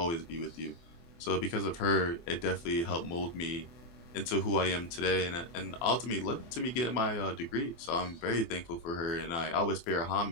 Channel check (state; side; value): late; right; 24 ms